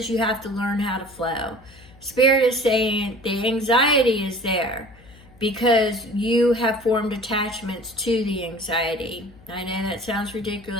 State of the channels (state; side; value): noise; left; hum, 24 dB below the sound